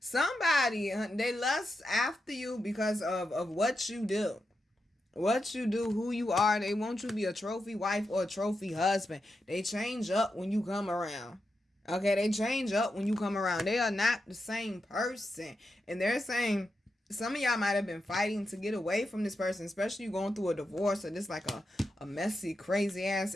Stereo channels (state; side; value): normal; both; correlation 0.87